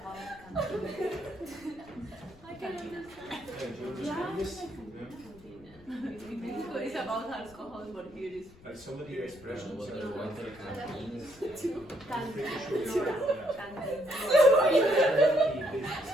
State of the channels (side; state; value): left; noise; rumble, 24 dB below the sound